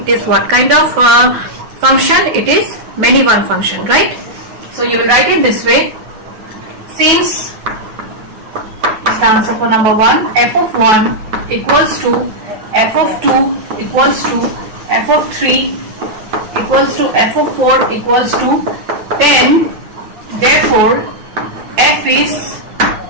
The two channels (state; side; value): late; left; 9.3 ms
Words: is what kind of function? It is many one function, right? So you will write it this way. Since is the answer for number 1, f of 1 equals to f of 2 equals to f of 3 equals to f of 4 equals to 10. Therefore, f is